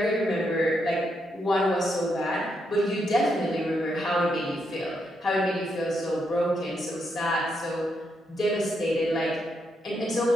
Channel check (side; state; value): both; normal; correlation 0.80